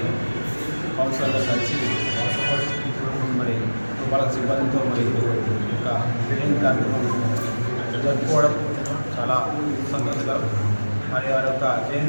కౌన్సిలర్తో కలిసి మరి వాళ్ళ సిబ్బందితో మరి యొక్క జయంతి కార్యక్రమం జరుపుకోవడం చాలా సంతోషకరం. మరి వారి యొక్క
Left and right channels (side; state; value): both; inverted; correlation -1.00